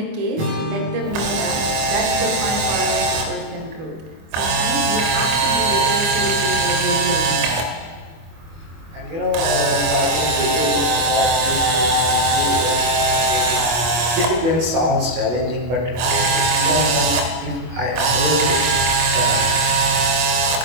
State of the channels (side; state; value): left; late; 25 ms